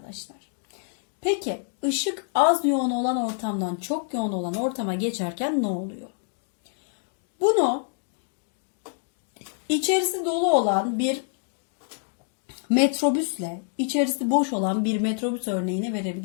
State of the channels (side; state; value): right; silent; 60 dB below the other